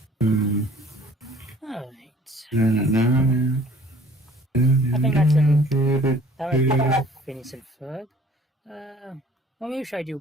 Mm. All right. I think that's that was Phineas and Ferb. Well, maybe should I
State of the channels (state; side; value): normal; both; correlation 0.53